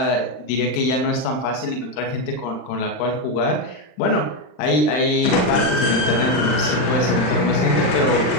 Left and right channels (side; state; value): right; late; 39 ms